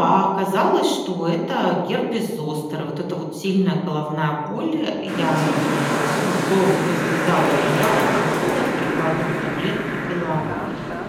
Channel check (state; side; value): identical; both; correlation 1.00